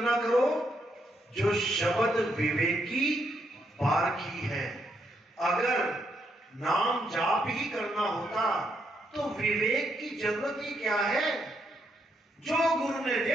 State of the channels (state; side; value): normal; both; correlation 0.77